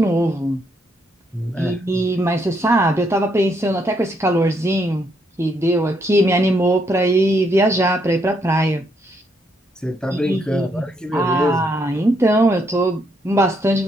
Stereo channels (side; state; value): both; normal; correlation 0.75